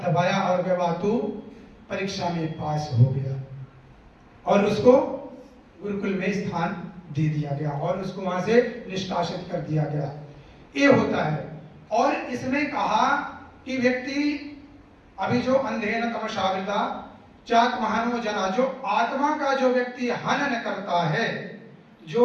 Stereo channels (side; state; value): both; identical; correlation 1.00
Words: और वह बातू परीक्षा में पास हो गया और उसको गुरुकुल में स्थान दे दिया गया और उसको वहां से निष्कासित कर दिया गया। ये होता है। और इसमें कहा कि व्यक्ति अभी जो अंधेन तमसावृता चाक महानो जना, जो आत्मा का जो व्यक्ति हनन करता है,